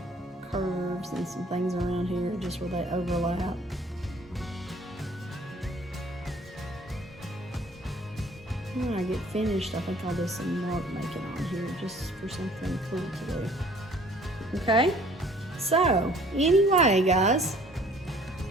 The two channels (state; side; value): normal; both; correlation 0.54